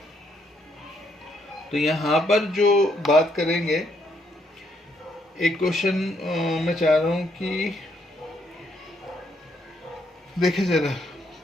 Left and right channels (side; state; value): both; normal; correlation 0.73